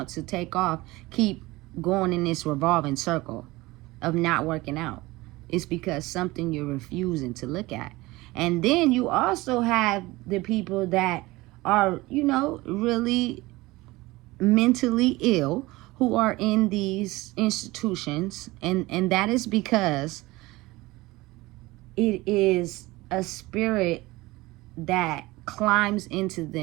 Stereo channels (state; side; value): quieter; left; 20.4 dB